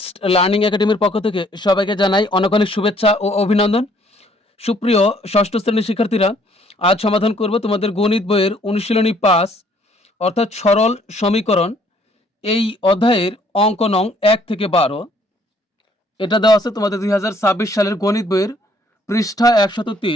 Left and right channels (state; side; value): normal; both; correlation 0.63